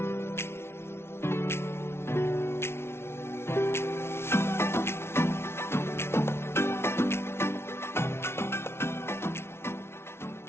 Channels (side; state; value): right; late; 0.12 ms